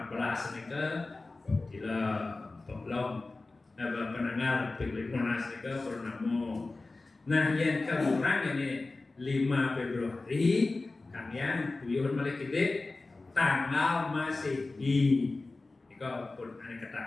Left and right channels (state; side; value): quieter; right; 3.4 dB